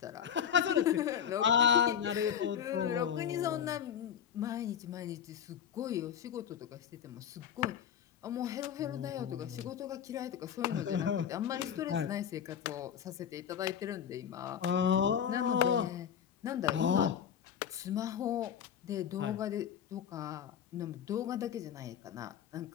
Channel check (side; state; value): right; quieter; 8.6 dB